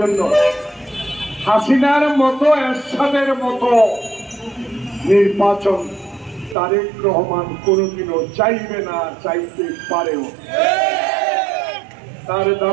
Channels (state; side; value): drops out; left; at 6.6 s